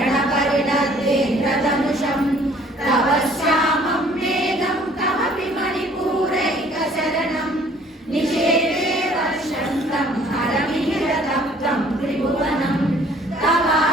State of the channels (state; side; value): normal; both; correlation 0.56